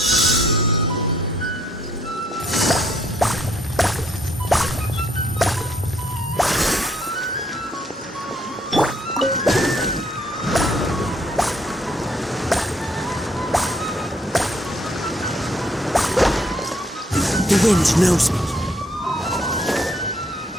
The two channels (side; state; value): both; normal; correlation 0.68